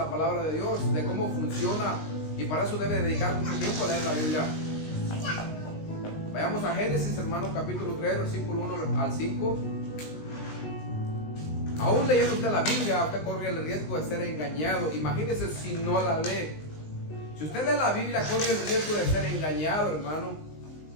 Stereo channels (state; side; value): late; right; 19 ms